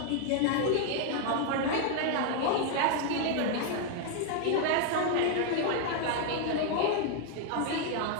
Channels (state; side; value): different; both; correlation 0.00